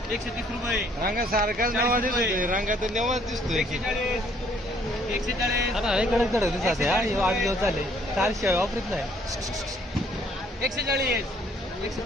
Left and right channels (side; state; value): both; normal; correlation 0.63